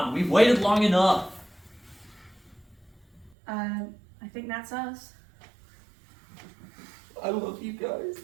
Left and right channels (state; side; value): drops out; left; at 3.3 s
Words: we've waited long enough. I think that's us. I love you guys.